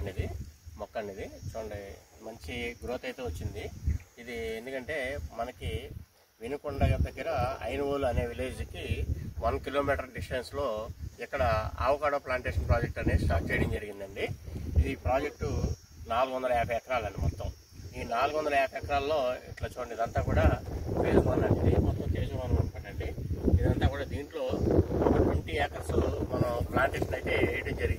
ఇది మొక్క అండి. ఇది చూడండి, మంచి గ్రోత్ అయితే వచ్చింది. ఇది ఎందుకంటే మనకి వినుకొండ దగ్గర ఐనవోలు అనే విలేజ్కి 1 కిలోమీటర్ డిస్టెన్స్లో ఇక్కడ ఆవకాడో ప్లాంటేషన్ ప్రాజెక్ట్ అనేది స్టార్ట్ చేయడం జరిగిందండి. ఈ ప్రాజెక్టు 450 ఎకరాలండి మొత్తం. ఈ 450 ఎకరాల్లో ఇట్లా చూడండి, ఇదంతా కూడా ఫేజ్ 1 అండి. మొత్తం ఫేజ్ 1 అనమాటండి. ఇదంతా కూడా దీంట్లో ఒక 20 ఏకర్స్ మనం ప్లాంటేషన్ అయితే వేయడం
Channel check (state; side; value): identical; both; correlation 1.00